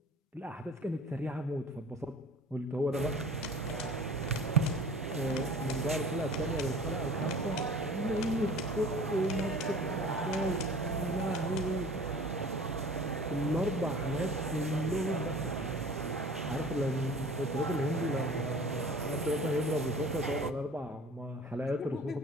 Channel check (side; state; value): both; normal; correlation 0.44